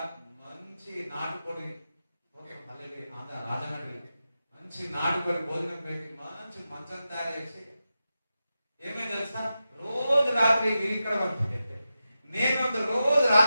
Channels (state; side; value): inverted; both; correlation -0.91